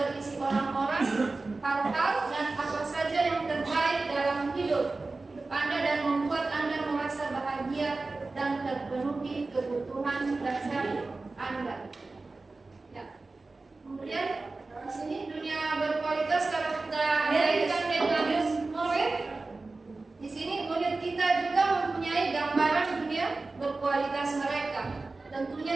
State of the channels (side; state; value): left; quieter; 3.5 dB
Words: orang-orang, hal-hal dan apa saja yang terbaik dalam hidup Anda dan membuat Anda merasa bahagia dan terpenuhi kebutuhan dasar Anda. Ya. Kemudian di sini dunia berkualitas kalau kita kaitkan dengan murid, di sini murid kita juga mempunyai gambaran dunia berkualitas mereka. Tentunya